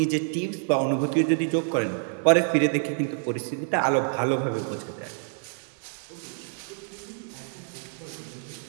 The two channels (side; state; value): left; silent; 60 dB below the other